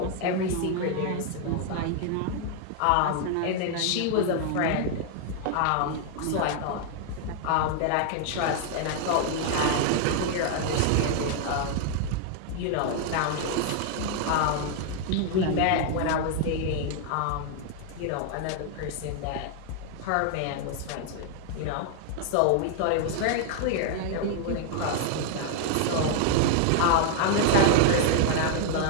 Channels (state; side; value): different; both; correlation 0.00